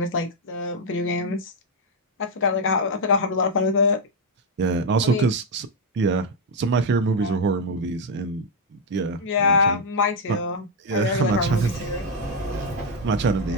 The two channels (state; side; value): normal; both; correlation 0.03